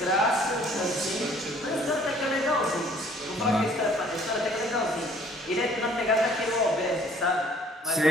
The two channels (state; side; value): normal; both; correlation 0.58